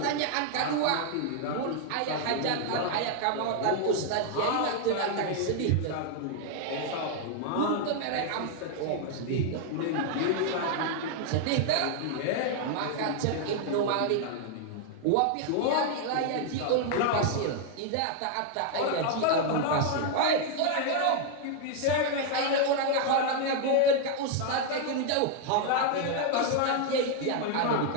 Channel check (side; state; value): both; different; correlation 0.00